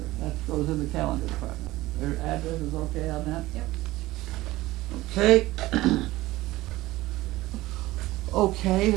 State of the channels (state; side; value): quieter; left; 17.9 dB